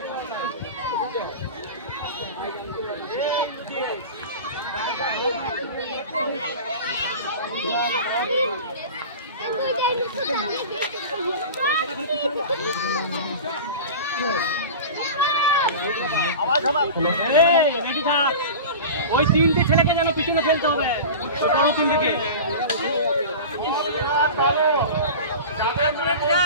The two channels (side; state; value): both; inverted; correlation -0.32